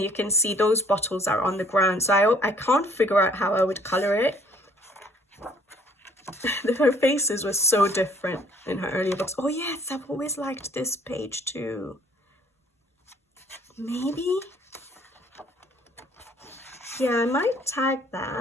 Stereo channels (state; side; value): normal; both; correlation 0.59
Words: you can see those bottles are on the ground. So I can't figure out how I would color it. Her faces were so different in her earlier books. Oh yes, I've always liked this page too. Maybe? Yeah, I might tag